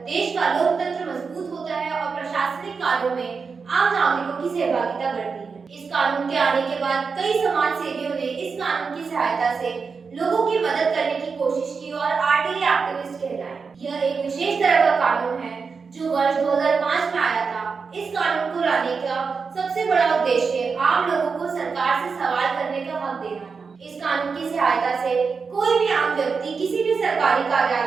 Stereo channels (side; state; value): left; quieter; 5.2 dB